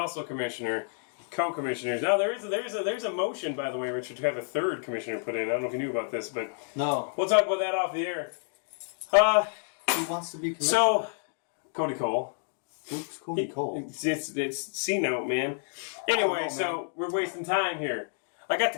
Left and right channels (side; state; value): right; silent; digital silence